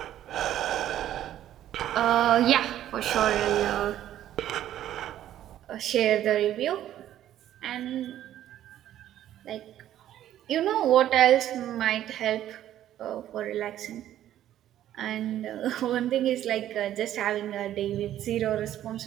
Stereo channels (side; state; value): left; quieter; 12.1 dB